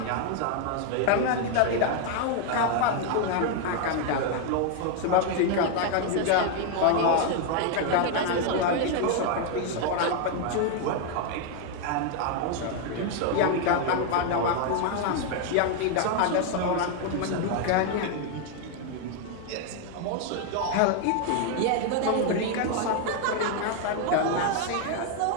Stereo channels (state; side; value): different; both; correlation 0.01